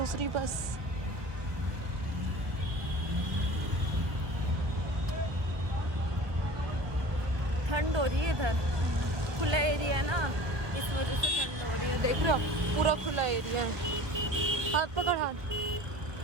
बस। हो रही है इधर, खुला एरिया है ना, इस वजह से ठंड हो रही है। देख रहे हो पूरा खुला एरिया है। हाथ पकड़ हाथ।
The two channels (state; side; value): late; left; 1.2 ms